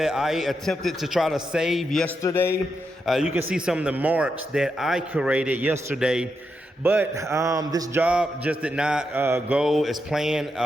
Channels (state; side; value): normal; both; correlation 0.84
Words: I attempted to try to save yesterday. You can see some of the marks that I created yesterday, but this job just did not go as planned.